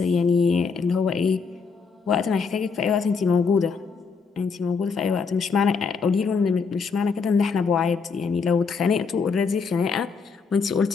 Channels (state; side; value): quieter; right; 5.2 dB